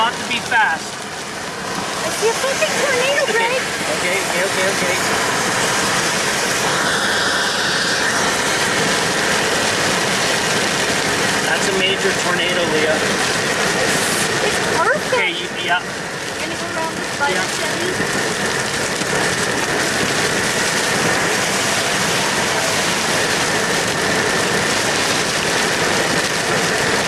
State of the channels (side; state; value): both; identical; correlation 1.00